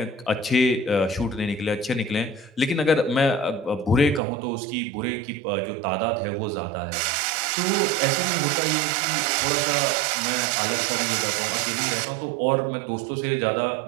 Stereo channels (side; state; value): left; drops out; at 4.2 s